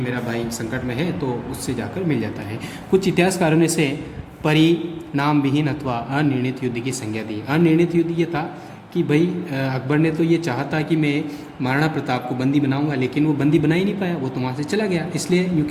भाई संकट में है, तो उससे जाकर मिल जाता है। कुछ इतिहासकारों ने इसे परिणाम विहीन अथवा अनिर्णित युद्ध की संज्ञा दी। अनिर्णित युद्ध ये था कि भाई अकबर ने तो ये चाहा था कि मैं महाराणा प्रताप को बंदी बनाऊंगा, लेकिन वो बंदी बना ही नहीं पाया, वो तो वहाँ से चला गया। इसलिए यूँ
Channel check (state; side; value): identical; both; correlation 1.00